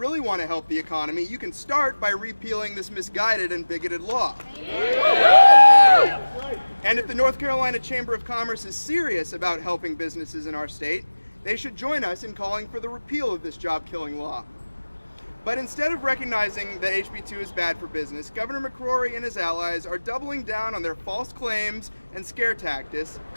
want to help the economy, you can start by repealing this misguided and bigoted law. And if the North Carolina Chamber of Commerce is serious about helping businesses in our state, they should join us in calling for the repeal of this job-killing law. But instead of recognizing that HB 2 is bad for business, Governor McCrory and his allies are doubling down on their false claims and scare tactics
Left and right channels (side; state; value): both; inverted; correlation -1.00